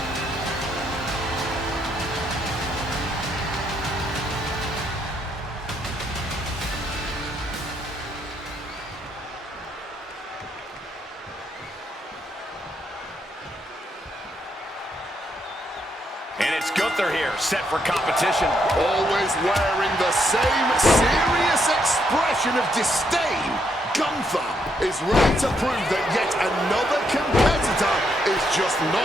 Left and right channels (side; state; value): both; normal; correlation 0.76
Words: And it's Gunther here, set for competition. Always wearing the same serious expression of disdain, Gunther is ready to prove that yet another competitor is just